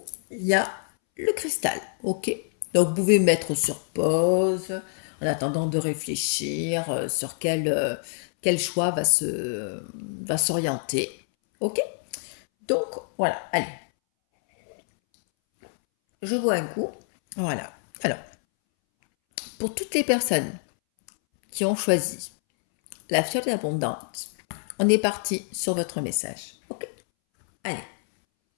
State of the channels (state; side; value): silent; right; 61 dB below the other